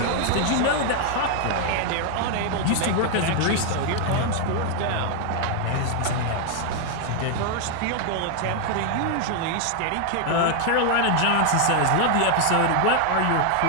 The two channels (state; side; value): different; both; correlation 0.00